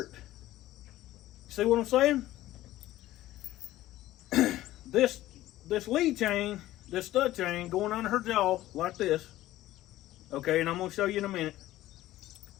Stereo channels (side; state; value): right; quieter; 15.3 dB